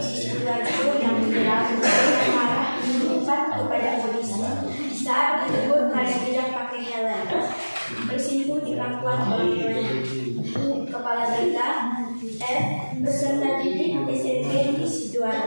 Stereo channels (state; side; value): inverted; both; correlation -1.00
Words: Sidoarjo yang menjelang marah menyimpan kepada polisi saat ditegur karena tidak pakai helm, bersimpuh di pangkuan orang tuanya. Kepala berita F. Peserta didik SMP di